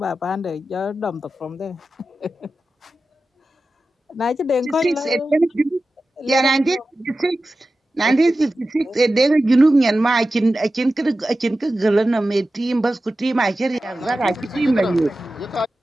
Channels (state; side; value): normal; both; correlation 0.94